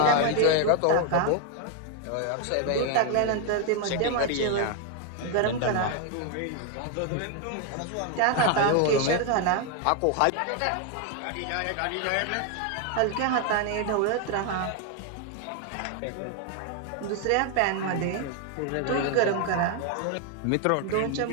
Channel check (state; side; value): different; both; correlation 0.01